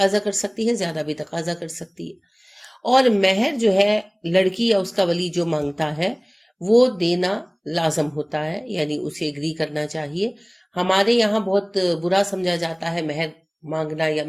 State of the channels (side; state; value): both; identical; correlation 1.00